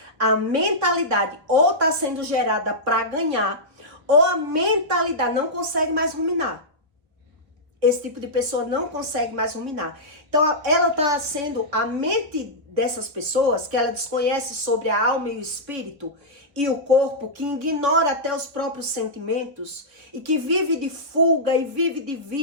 a mentalidade ou está sendo gerada para ganhar, ou a mentalidade não consegue mais ruminar. Esse tipo de pessoa não consegue mais ruminar. Então, ela está sendo a mente dessas pessoas, que ela desconhece sobre a alma e o espírito e o corpo, que ignora até os próprios sentimentos e que vive de fuga e vive de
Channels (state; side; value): late; left; 3.6 ms